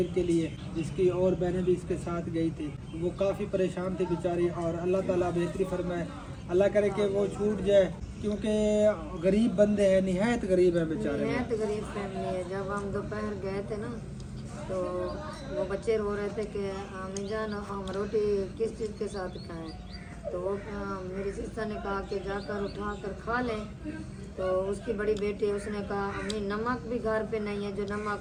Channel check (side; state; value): both; identical; correlation 1.00